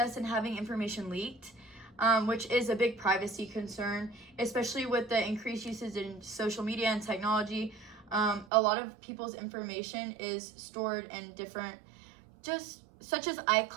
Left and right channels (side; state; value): left; drops out; at 8.5 s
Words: and having information leaked, which is a big privacy concern, especially with the increased usage in social media and technology. A lot of people's information is stored in different, just such as